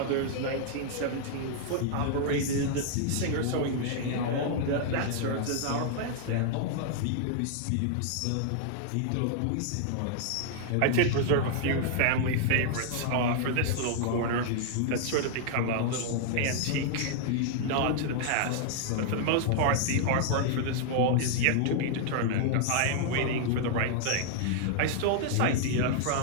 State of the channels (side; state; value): both; different; correlation -0.01